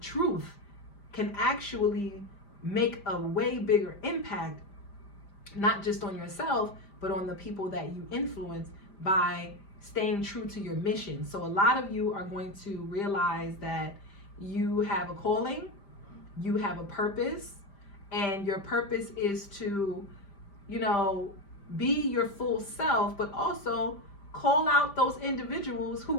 truth, can actually make a way bigger impact, not just on yourself, but on the people that you influence by staying true to your mission. So a lot of you are going to realize that you have a calling, you have a purpose, and your purpose is to, you know, be your full self, but also call out those individuals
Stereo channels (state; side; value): late; right; 5.0 ms